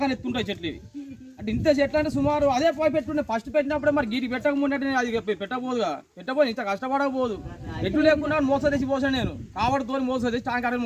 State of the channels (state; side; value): identical; both; correlation 1.00